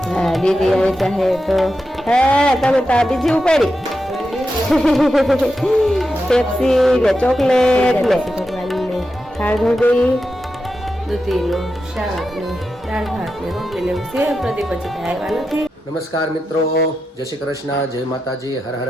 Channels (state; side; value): normal; both; correlation 0.89